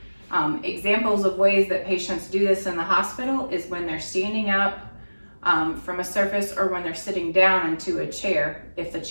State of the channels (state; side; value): inverted; both; correlation -1.00